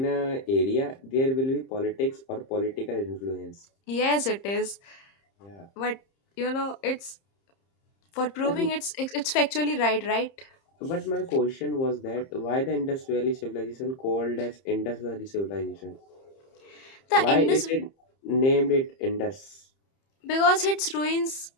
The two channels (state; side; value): late; right; 30 ms